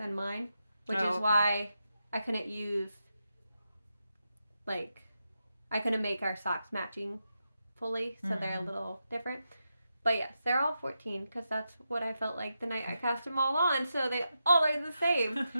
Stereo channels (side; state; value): both; inverted; correlation -0.87